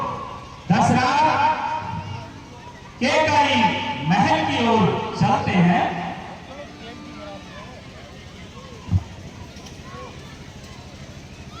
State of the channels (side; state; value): both; identical; correlation 1.00